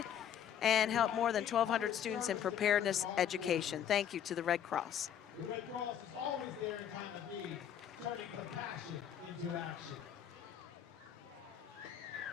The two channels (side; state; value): right; quieter; 9.4 dB